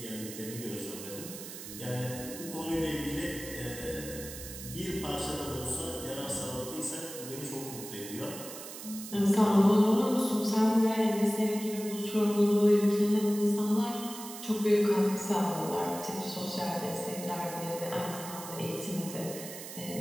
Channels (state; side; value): noise; right; hiss, 11 dB below the sound